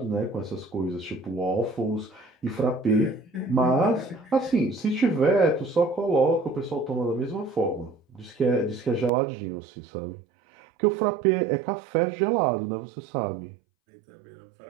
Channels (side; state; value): left; drops out; at 9.1 s